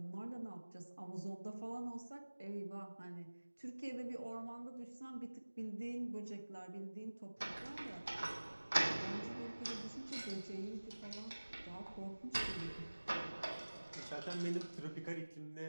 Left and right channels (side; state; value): both; inverted; correlation -1.00